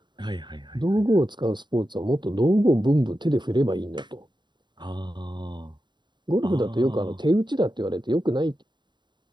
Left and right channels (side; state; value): left; late; 0.22 ms